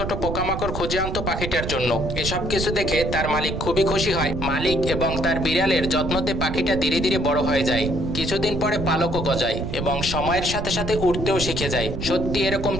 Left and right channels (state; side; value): noise; right; rumble, 5 dB below the sound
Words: পোকামাকড় খুঁজে আনতো পাখিটার জন্য। এসব কিছু দেখে তার মালিক খুবই খুশি হয়। মালিক এবং তার বিড়ালের যত্নতে পাখিটা ধীরে ধীরে বড় হয়ে যায়। কিছুদিন পরে পালকও গজায় এবং সময়ের সাথে সাথে উঠতেও শিখে যায়। সত্যি এরকম